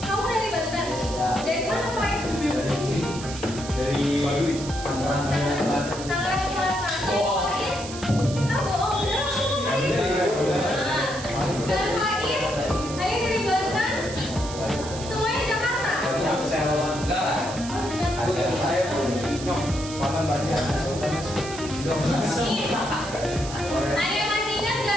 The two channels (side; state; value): right; noise; hiss, 12 dB below the sound